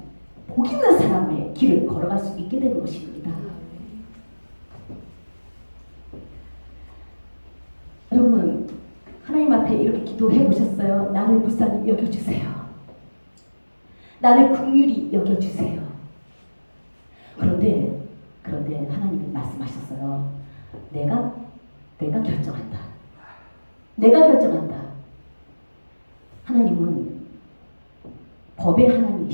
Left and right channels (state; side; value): inverted; both; correlation -1.00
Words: 복 있는 사람의 길을 걸어갈 수 있게 되는 것입니다. 여러분, 하나님 앞에 이렇게 기도해 보셨어요? 나를 불쌍히 여겨주세요. 나를 긍휼히 여겨주세요. 그런데 하나님이 말씀하셨어요. 내가 결정한다. 내가 결정한다. 하나님은 법의